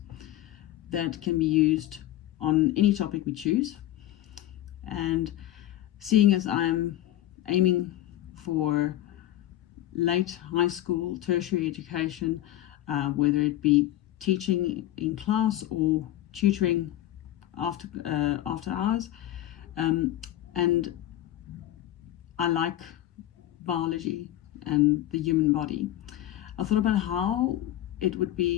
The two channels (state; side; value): quieter; right; 13.9 dB